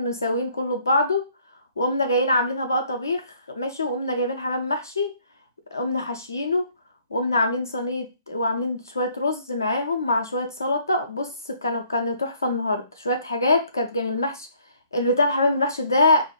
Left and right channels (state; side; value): inverted; both; correlation -0.64